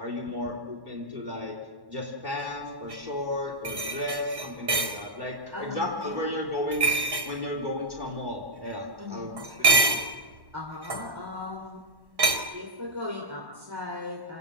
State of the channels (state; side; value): late; left; 1.1 ms